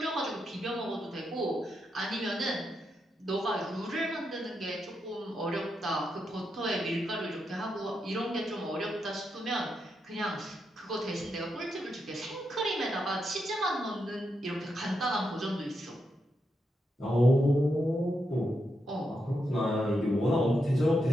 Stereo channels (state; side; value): normal; both; correlation 0.83